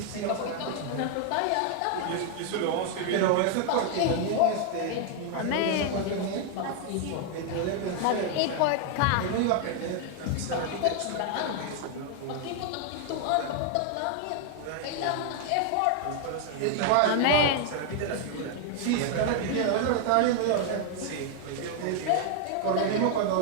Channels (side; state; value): both; different; correlation 0.00